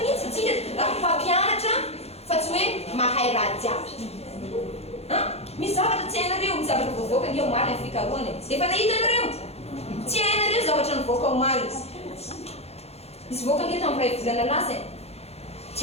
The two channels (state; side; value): late; right; 0.30 ms